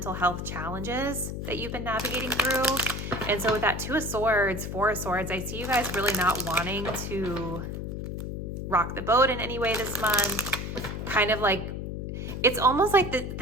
health challenges that you've been navigating through. And so with that 2 of Swords, 4 of Swords, I see you guys really not wanting to rock the boat in any way this month. Kind of like, it's almost like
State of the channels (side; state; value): left; noise; hum, 5 dB below the sound